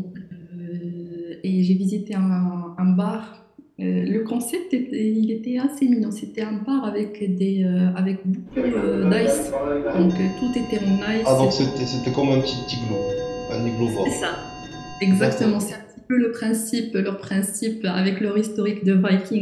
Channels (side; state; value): both; identical; correlation 1.00